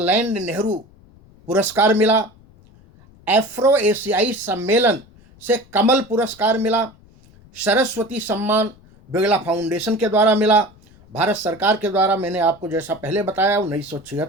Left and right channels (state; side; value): noise; left; rumble, 27 dB below the sound